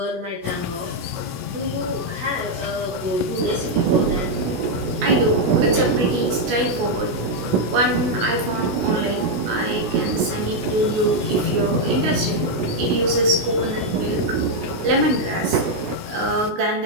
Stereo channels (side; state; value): left; late; 17 ms